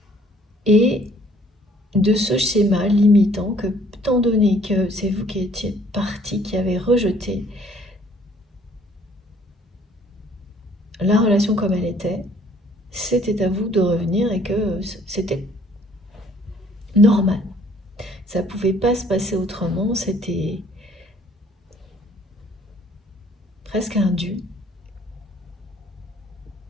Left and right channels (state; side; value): normal; both; correlation 0.59